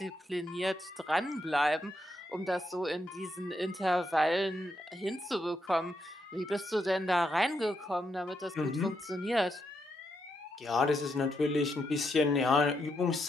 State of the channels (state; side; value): normal; both; correlation 0.81